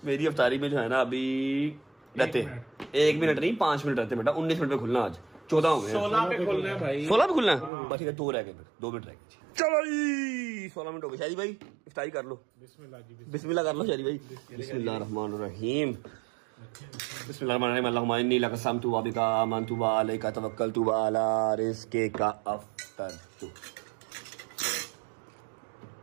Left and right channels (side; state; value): left; drops out; at 7.7 s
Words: मेरी अफ्तारी में जो है ना अभी रहते 1 मिनट नहीं 5 मिनट रहते बेटा 19 मिनट में खुलना आज 14 हो गए 16 पे खुलना है भाई 16 पे खुलना है बस ठीक है 2 रह गए फिर 2 मिनट रह गए चलो जी 16 मिनट हो गए शादी भाई इफ्तारी कर लो बिस्मिल्लाह कर लो शादी भाई बिस्मिल्लाहिर्रहमानिर्रहीम बिस्मिल्लाहिर्रहमानिर्रहीम अल्लाहुम्मा इन्नी लक समतु व बिका आमनतु व अलैका तवक्कलतु व अला रिज़्क़िका अफ़तरतु